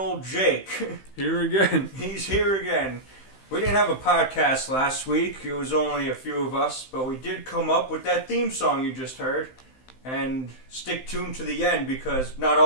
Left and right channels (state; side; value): late; right; 15 ms